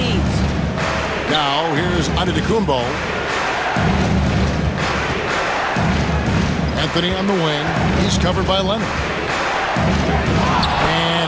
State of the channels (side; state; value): both; identical; correlation 1.00